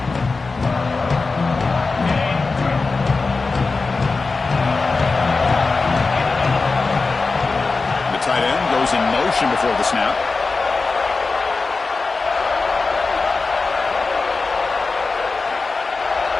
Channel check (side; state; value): right; quieter; 4.0 dB